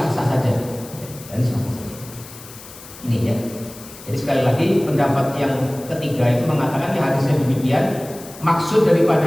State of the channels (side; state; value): left; noise; hiss, 17 dB below the sound